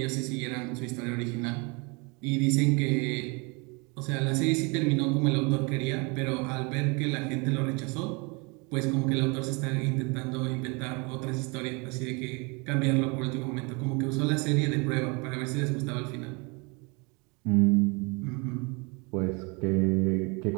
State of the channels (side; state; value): left; quieter; 29.9 dB